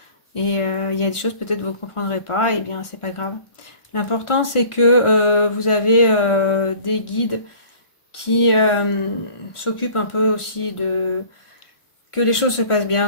Et il y a des choses peut-être vous ne comprendrez pas. Et bien, c'est pas grave. L'important, c'est que vous avez des guides qui s'occupent un peu aussi de que les choses se passent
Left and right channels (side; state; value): right; late; 1.4 ms